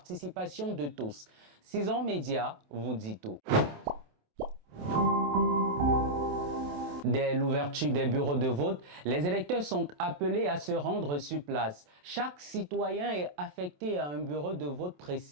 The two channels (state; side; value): late; left; 27 ms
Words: de tous. 6 ans Média vous dit tout. Dès l'ouverture des bureaux de vote, les électeurs sont appelés à se rendre sur place. Chaque citoyen est affecté à un bureau de vote